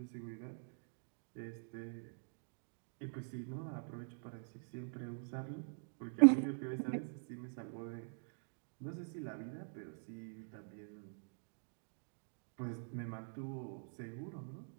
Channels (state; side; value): silent; left; digital silence